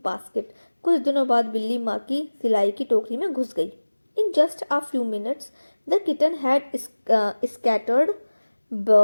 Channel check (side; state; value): both; inverted; correlation -1.00